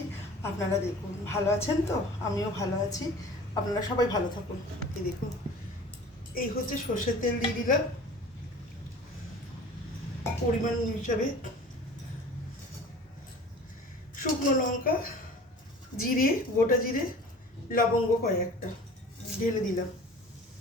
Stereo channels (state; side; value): normal; both; correlation 0.42